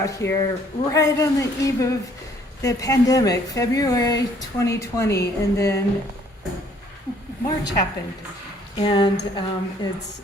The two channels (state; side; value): normal; both; correlation 0.61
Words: here right on the eve of the pandemic, February 2020, and then March happened. And